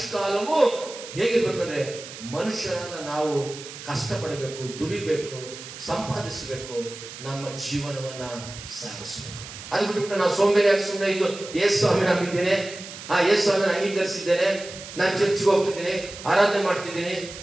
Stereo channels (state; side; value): noise; right; hiss, 13 dB below the sound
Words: ಹೇಗಿರ್ಬೇಕಂದ್ರೆ ಮನುಷ್ಯರಾದ ನಾವು ಕಷ್ಟಪಡಬೇಕು, ದುಡಿಬೇಕು, ಸಂಪಾದಿಸಬೇಕು, ನಮ್ಮ ಜೀವನವನ್ನ ಸಾಗಿಸಬೇಕು. ಅದು ಬಿಟ್ಟು ನಾವು ಸೋಂಬೇರಿಯಾಗಿ ಸುಮ್ಮನೆ ಇದು ಯೇಸು ಸ್ವಾಮಿ ನಂಬಿದ್ದೇನೆ, ಯೇಸು ಸ್ವಾಮಿನ ಅಂಗೀಕರಿಸಿದ್ದೇನೆ, ನಾನು ಚರ್ಚ್ಗೆ ಹೋಗ್ತಿದ್ದೀನಿ, ಆರಾಧನೆ ಮಾಡ್ತಿದ್ದೀನಿ,